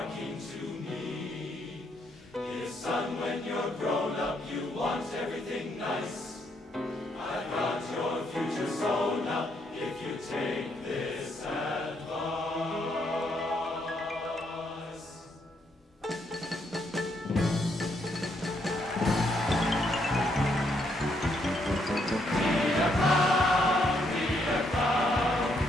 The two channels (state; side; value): normal; both; correlation 0.74